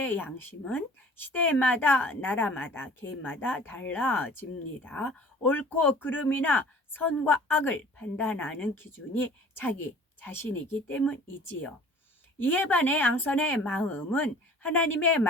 양심은 시대마다 나라마다 개인마다 달라집니다. 옳고 그름이나 선과 악을 판단하는 기준이 자기 자신이기 때문이지요. 이에 반해 양선의 마음은 하나님의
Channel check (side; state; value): both; normal; correlation 0.48